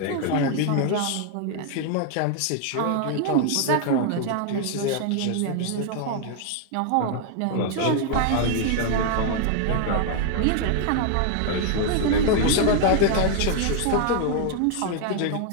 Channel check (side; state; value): both; different; correlation 0.00